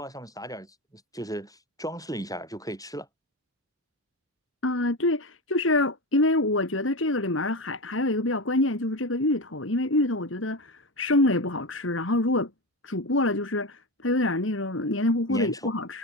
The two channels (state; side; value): normal; both; correlation 0.19